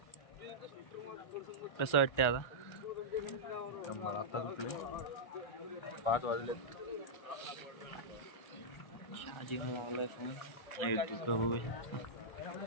कसं वाटतंय आता? मला आता उठले 5 वाजले. चार्जिंग लावलाय फोन. तू का बघू शकता.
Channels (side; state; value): right; late; 1.3 ms